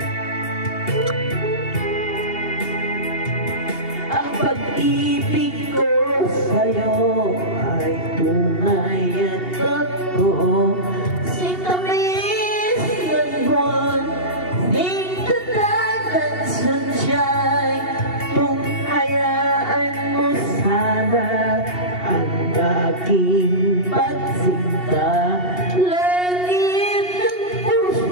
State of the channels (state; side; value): late; right; 2.8 ms